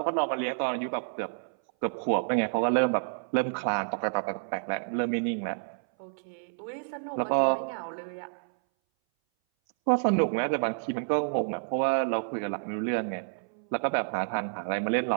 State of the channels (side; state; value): left; silent; 58 dB below the other